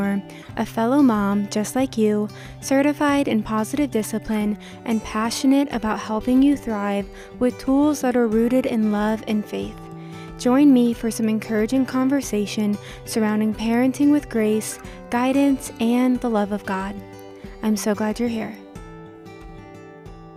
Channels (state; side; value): identical; both; correlation 1.00